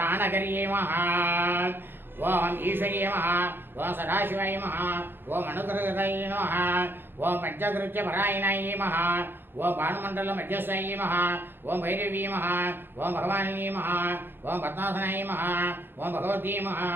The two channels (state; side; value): late; left; 0.10 ms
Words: நமஹ ஓம் ஈஸ்வரியே நமஹ ஓம் சதாசிவாய நமஹ ஓம் அனுகிரகதாய நமஹ ஓம் பஞ்சகிருத்திய பராயணாய நமஹ ஓம் பானுமண்டல மத்தியஸ்தாய நமஹ ஓம் பைரவி நமஹ ஓம் பகவானியே நமஹ ஓம் பத்மாசனாய நமஹ ஓம் பகவதி நமஹ